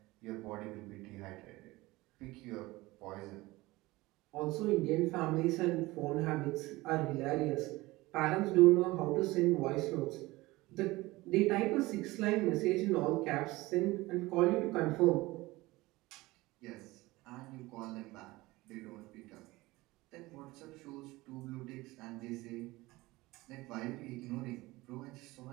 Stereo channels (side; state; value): left; quieter; 20.2 dB